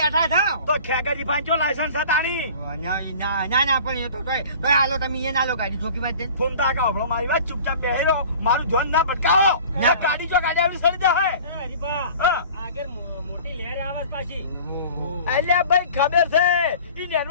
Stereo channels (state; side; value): inverted; both; correlation -0.43